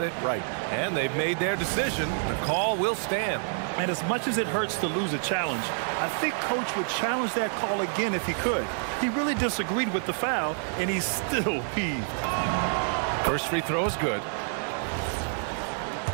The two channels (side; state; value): left; silent; 57 dB below the other